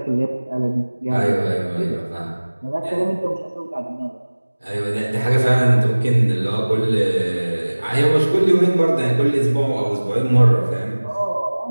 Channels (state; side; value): inverted; both; correlation -1.00